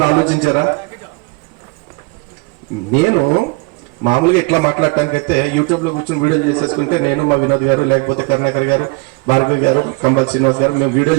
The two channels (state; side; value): quieter; left; 28.2 dB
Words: ఆలోచించారా? నేను మామూలుగా ఇట్లా మాట్లాడటానికి అయితే యూట్యూబ్ లో కూర్చొని వీడియోలు చేసేసుకుంటే నేను, మా వినోద్ గారు, లేకపోతే కరుణాకర్ గారు, భార్గవి గారు, కంబల్ శ్రీనివాస్ గారు మేము